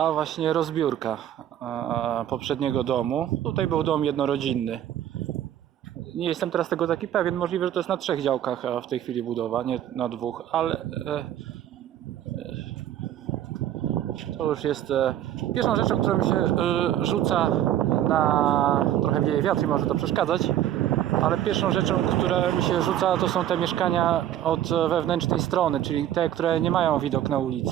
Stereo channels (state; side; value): quieter; left; 11.6 dB